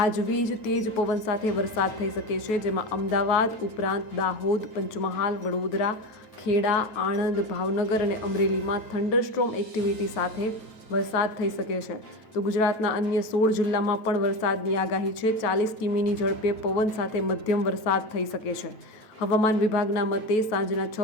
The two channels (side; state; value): right; late; 9.3 ms